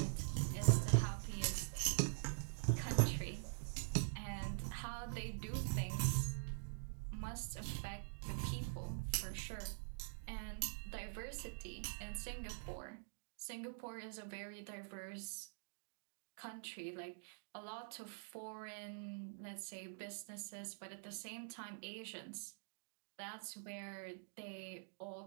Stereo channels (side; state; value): left; silent; digital silence